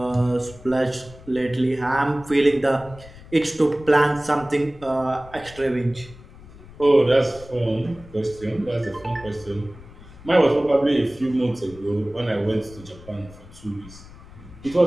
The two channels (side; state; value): left; noise; rumble, 19 dB below the sound